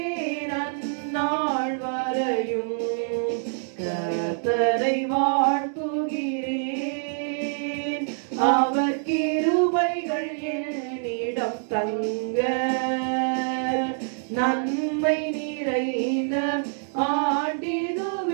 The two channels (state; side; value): silent; left; 61 dB below the other